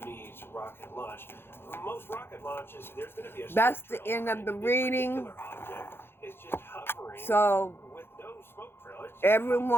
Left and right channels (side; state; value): right; late; 0.11 ms